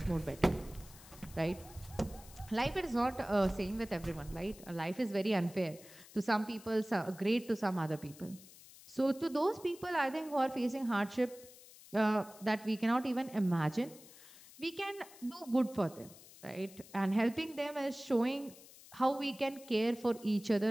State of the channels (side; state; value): left; noise; hiss, 20 dB below the sound